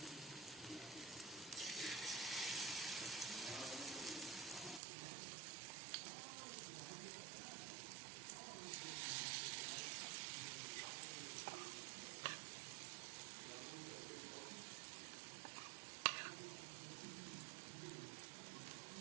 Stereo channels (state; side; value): drops out; left; at 4.8 s